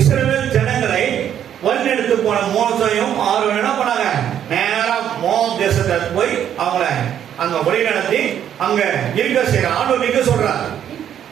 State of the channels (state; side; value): quieter; left; 9.8 dB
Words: இஸ்ரவேல் ஜனங்களை வழிநடத்து போன மோசையும் ஆரோனும் என்ன பண்ணாங்க, நேரா மோவாப் தேசத்தை போய் அவங்கள அங்க வழிநடத்தி அங்க இருக்க செய்யற ஆண்டவர் நிக்க சொல்றார்.